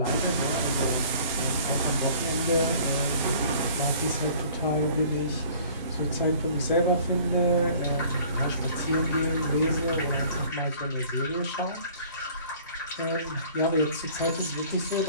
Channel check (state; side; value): inverted; both; correlation -0.51